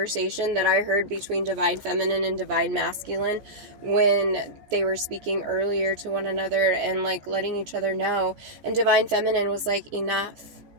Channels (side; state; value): left; late; 14 ms